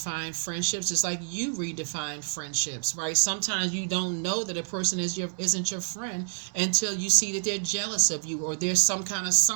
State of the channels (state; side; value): silent; left; digital silence